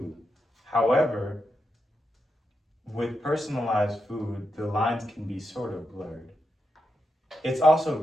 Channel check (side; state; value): both; normal; correlation 0.85